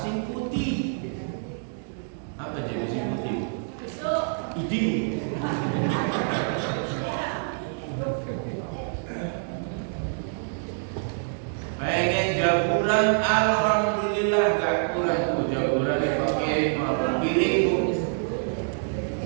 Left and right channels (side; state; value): left; silent; digital silence